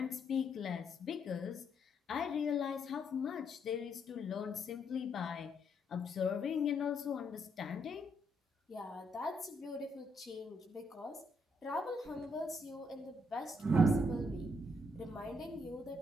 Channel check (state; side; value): normal; both; correlation 0.74